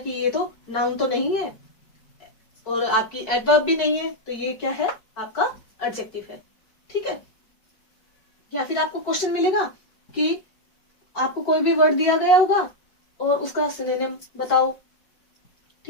ये तो नाउन तो नहीं है और आपकी एडवर्ब भी नहीं है, तो ये क्या है, आपका एडजेक्टिव है। ठीक है। या फिर आपको क्वेश्चन मिलेगा कि आपको कोई भी वर्ड दिया गया होगा और उसका सिनोनिम बताओ।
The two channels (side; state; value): right; late; 4.6 ms